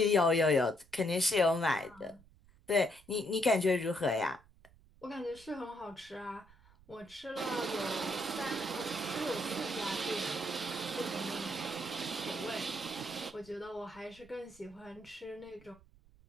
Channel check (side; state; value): right; noise; rumble, 26 dB below the sound